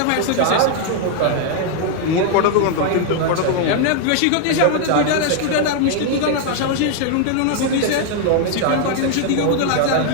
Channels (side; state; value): both; different; correlation 0.00